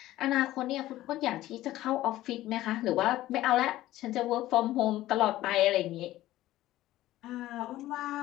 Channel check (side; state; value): right; quieter; 15.4 dB